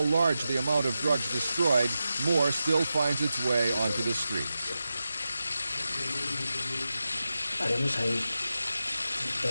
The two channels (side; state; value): both; inverted; correlation -0.91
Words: large the amount of drugs destroyed, more still finds its way onto the streets.